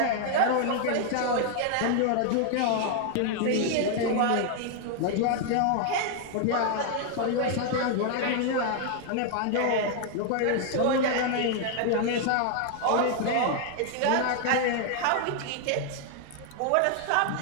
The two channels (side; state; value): both; different; correlation 0.00